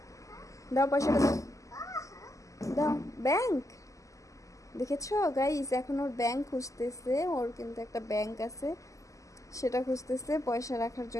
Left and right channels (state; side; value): late; right; 0.16 ms